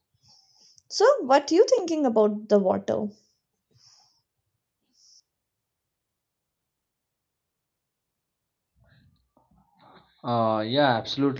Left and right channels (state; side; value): identical; both; correlation 1.00